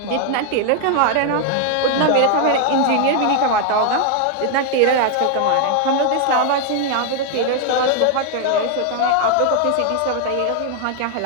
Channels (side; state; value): both; different; correlation 0.00